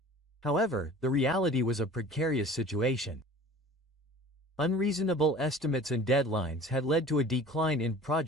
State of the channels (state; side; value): normal; both; correlation 0.44